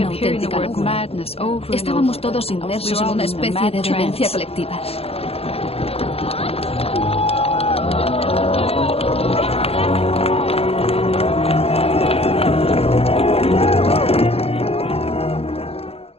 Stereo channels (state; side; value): late; right; 0.29 ms